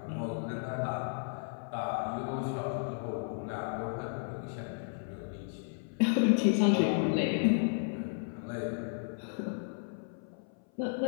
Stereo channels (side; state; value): right; silent; 55 dB below the other